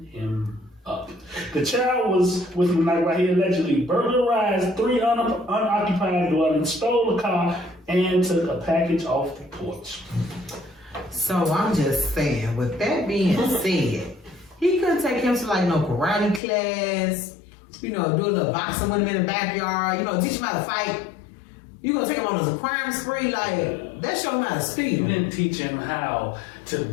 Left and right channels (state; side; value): drops out; right; at 16.4 s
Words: him up. The child was with him while he allegedly burglarized 3 unoccupied dwellings, stole a car, and took a package off the porch. So I'm just saying, with that being said, he couldn't take him to like no karate class, do a little boxing with him in the backyard, teach him how to fight. You gonna take him on as a crime spree? Like, that show him how to You steal. didn't teach him how to